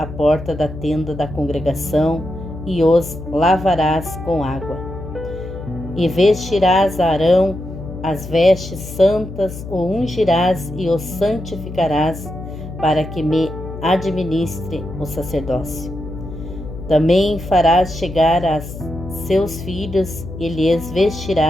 porta da tenda da congregação, e os lavarás com água. E vestirás a Arão as vestes santas, o ungirás e o santificarás, para que me administre o sacerdócio. Também farás chegar a seus filhos, e lhes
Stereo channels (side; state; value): left; noise; hum, 11 dB below the sound